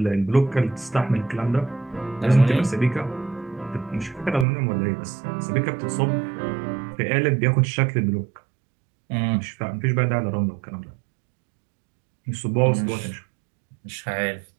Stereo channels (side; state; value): left; drops out; at 4.5 s